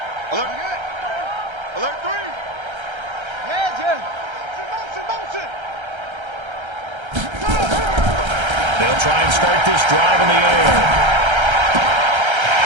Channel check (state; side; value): late; left; 1.3 ms